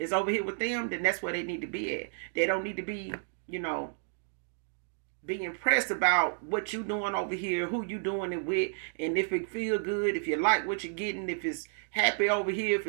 over here with them, then that's where they need to be at. They don't need to be, be impressed about what you doing over here, who you doing it with, and if it feel good, if you like what you're getting, if it's happy over here, if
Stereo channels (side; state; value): left; silent; digital silence